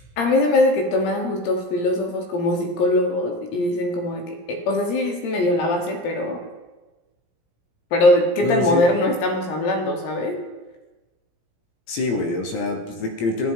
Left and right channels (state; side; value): late; right; 17 ms